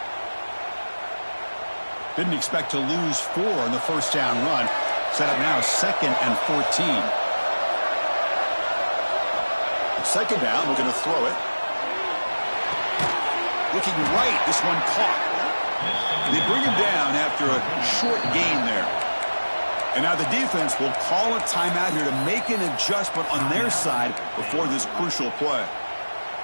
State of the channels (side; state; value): both; inverted; correlation -1.00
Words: Didn't expect to lose 4 in the first down run. Set up now 2nd and 14. 2nd down, we're going to throw it. Looking right, this one caught. They bring him down after a short gain there. And now the defense will call a timeout here to make an adjustment on their side before this crucial play.